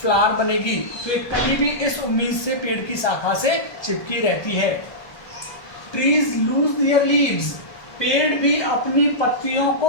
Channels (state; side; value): late; right; 1.2 ms